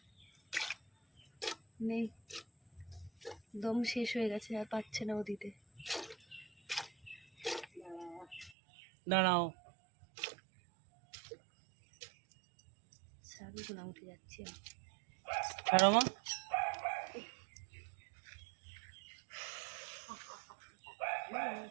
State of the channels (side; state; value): left; drops out; at 8.6 s